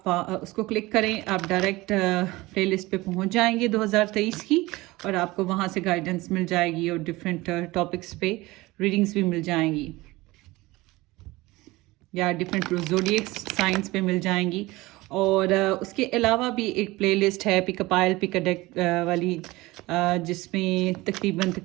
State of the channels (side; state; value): left; quieter; 20.4 dB